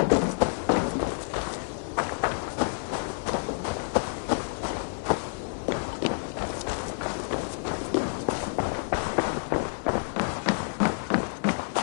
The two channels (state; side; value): silent; right; digital silence